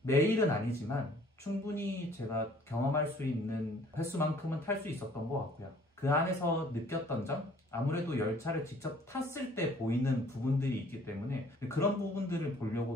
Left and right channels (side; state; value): both; normal; correlation 0.56